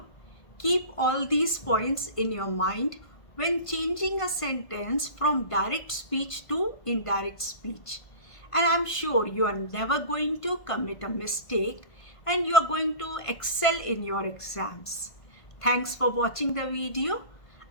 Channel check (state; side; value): late; right; 1.5 ms